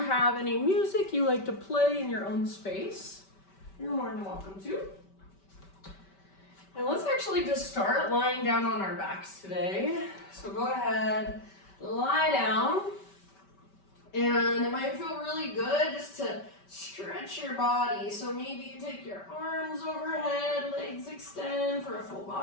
any music you like to play in your own space, you're more than welcome to. And let's actually just start lying down on our backs today. So go ahead, lie down. And it might feel really good just to stretch your body. So maybe you take your arms overhead, legs extend for a full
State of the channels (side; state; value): right; late; 5.2 ms